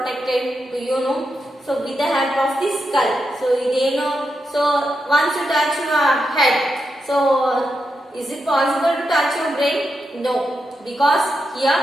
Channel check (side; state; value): both; normal; correlation 0.86